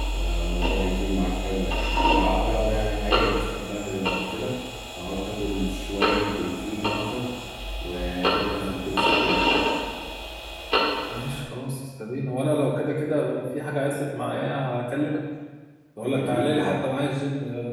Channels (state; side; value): identical; both; correlation 1.00